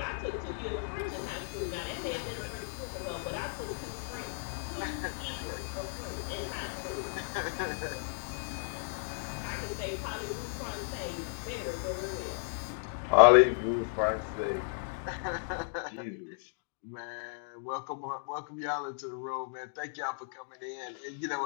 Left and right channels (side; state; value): right; silent; digital silence